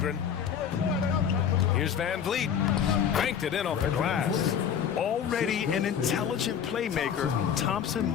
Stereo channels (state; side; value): quieter; right; 8.1 dB